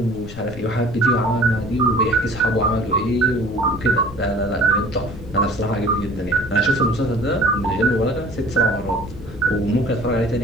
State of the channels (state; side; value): noise; left; rumble, 13 dB below the sound